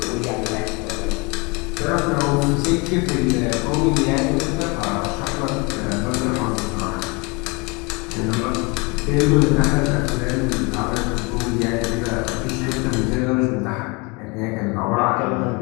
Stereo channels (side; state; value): right; quieter; 28.7 dB